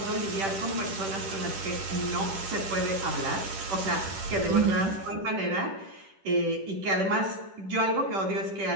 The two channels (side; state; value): left; late; 10 ms